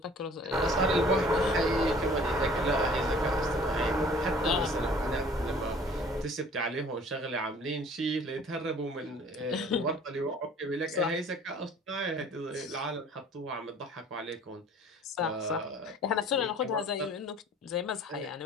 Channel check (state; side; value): normal; both; correlation 0.51